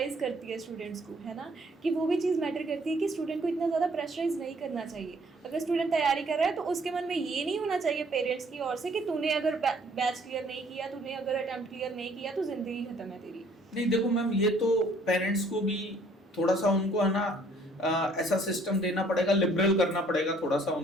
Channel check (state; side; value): normal; both; correlation 0.60